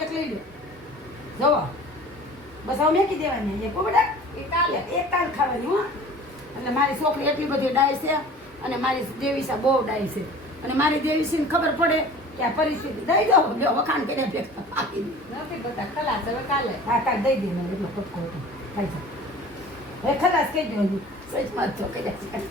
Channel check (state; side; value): normal; both; correlation 0.43